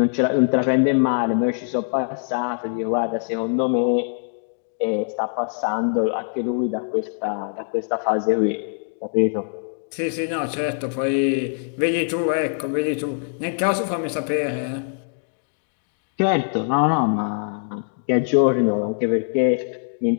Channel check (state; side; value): silent; right; digital silence